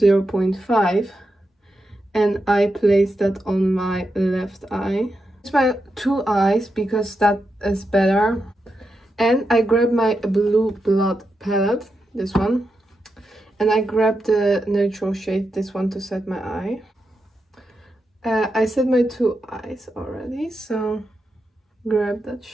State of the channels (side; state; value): both; normal; correlation 0.87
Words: and I place that on my left eye. It's my two eyes because that is better. And I grab my blue blood palette, this one, and I grab the neutral shade, this one, to set my eye. I set my two eyes already, so grab that